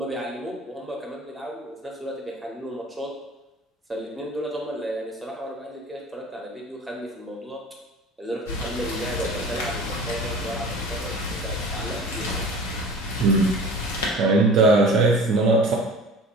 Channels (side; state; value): both; normal; correlation 0.41